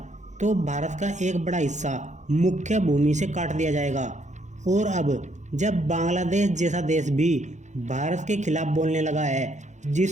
तो भारत का एक बड़ा हिस्सा मुख्य भूमि से काट दिया जाएगा। और अब जब बांग्लादेश जैसा देश भी भारत के खिलाफ बोलने लगा है,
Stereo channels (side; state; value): left; late; 0.34 ms